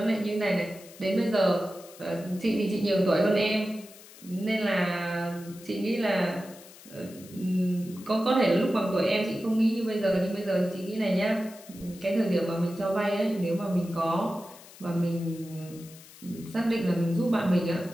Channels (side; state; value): left; noise; hiss, 20 dB below the sound